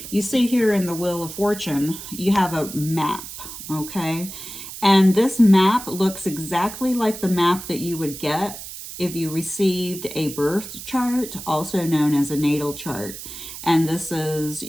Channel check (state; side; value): noise; right; hiss, 11 dB below the sound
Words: you see here in the Wheel of Fortune, you have a map. Okay, and this map looks exactly like the map that you would get if you received a birth chart, also known as a natal chart. And this is,